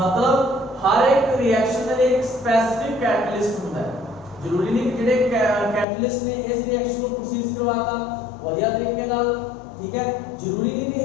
हर एक रिएक्शन के लिए एक स्पेसिफिक कैटलिस्ट होता है। जरूरी नहीं कि जेडे कैटलिस्ट ने इस रिएक्शन को प्रोसीड करवाता बढ़िया तरीके नाल, ठीक है, जरूरी नहीं कि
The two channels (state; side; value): drops out; right; at 5.9 s